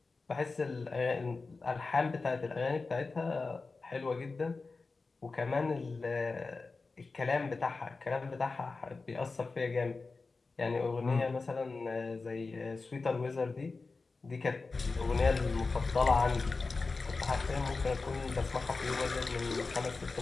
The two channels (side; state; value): right; quieter; 4.0 dB